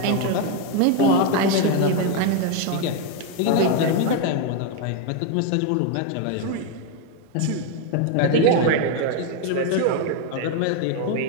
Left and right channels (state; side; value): different; both; correlation 0.01